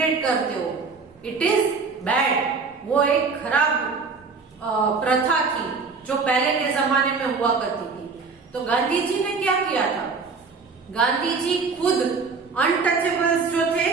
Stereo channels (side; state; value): left; quieter; 4.7 dB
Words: करते हो? It is bad. वो एक खराब प्रथा थी जो पहले के जमाने में हुआ करती थी। तो गांधी जी ने क्या किया था? गांधी जी खुद अनटचेबल्स जो थे